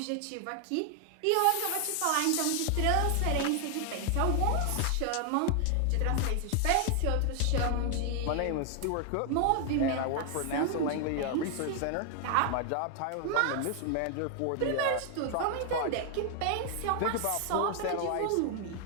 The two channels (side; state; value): both; different; correlation 0.00